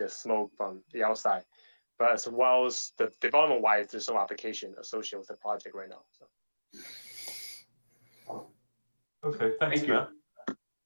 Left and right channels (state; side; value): inverted; both; correlation -1.00